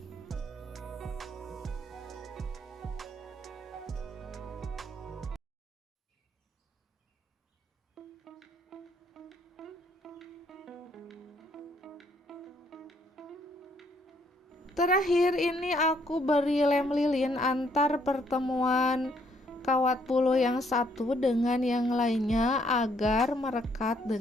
Terakhir ini aku beri lem lilin antar pertemuan kawat bulu yang satu dengan yang lainnya agar merekat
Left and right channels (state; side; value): normal; both; correlation 0.69